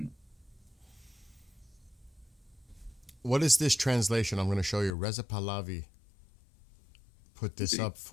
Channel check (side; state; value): right; drops out; at 4.9 s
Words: What is this translation? I'm going to show you. Reza Pahlavi put this up